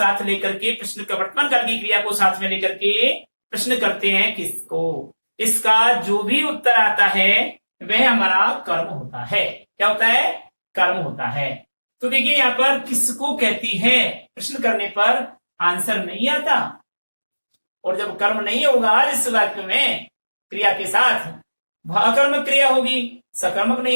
लेकर के प्रश्न का वर्तमान काल की क्रिया को साथ में लेकर के प्रश्न करते हैं किसको। इसका जो भी उत्तर आता है वह हमारा कर्म होता है। क्या होता है, कर्म होता है। तो देखिए यहां पर किसको कहती है प्रश्न करने पर आंसर नहीं आता, और जब कर्म नहीं होगा इस वाक्य में क्रिया के साथ, वह अकर्मक क्रिया होगी, सकर्मक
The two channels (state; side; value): inverted; both; correlation -1.00